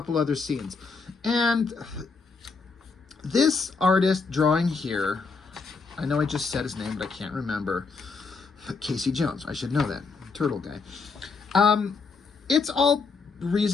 other scenes. And this artist drawing here, I know I just said his name, but I can't remember. Casey Jones, I should know that, turtle guy. It's all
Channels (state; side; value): quieter; right; 4.6 dB